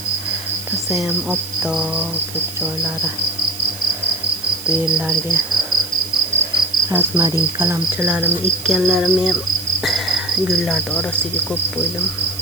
rosa ham oppoq ko'p joylari. Bu yerlarga rozmarin qalamchilarimni ekkanlarimni ham gullarni orasiga qo'yib qo'ydim.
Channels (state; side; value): noise; right; hiss, 12 dB below the sound